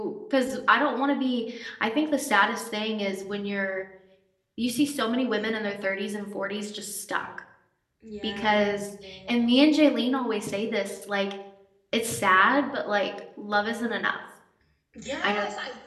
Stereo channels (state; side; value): identical; both; correlation 1.00